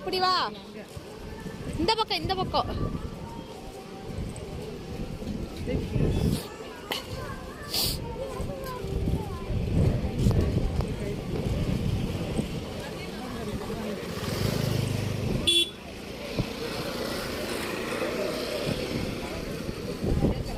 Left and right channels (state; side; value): identical; both; correlation 1.00